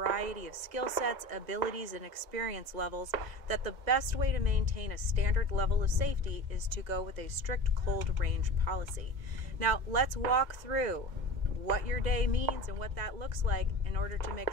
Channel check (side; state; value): left; late; 2.0 ms